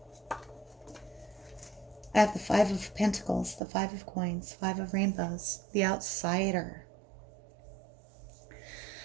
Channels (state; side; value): drops out; left; at 3.6 s